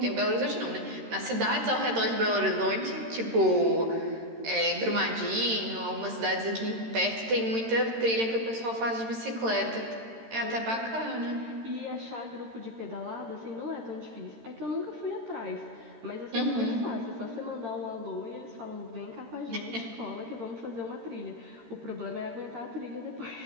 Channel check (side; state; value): left; late; 13 ms